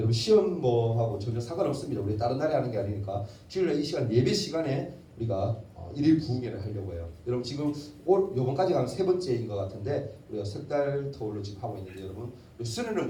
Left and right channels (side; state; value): both; identical; correlation 1.00